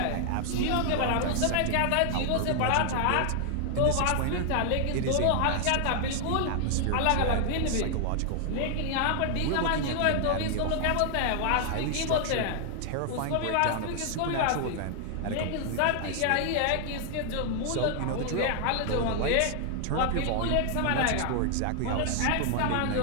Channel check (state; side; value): different; both; correlation 0.00